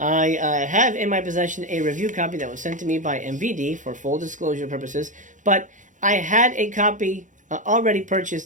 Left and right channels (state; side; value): late; left; 0.37 ms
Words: have in my possession a review copy that was sent to me by MVD for full disclosure purposes, but I had a copy already